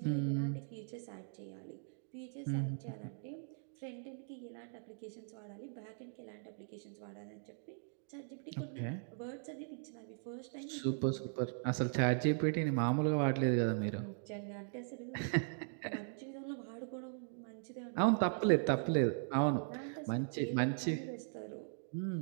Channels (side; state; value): left; silent; digital silence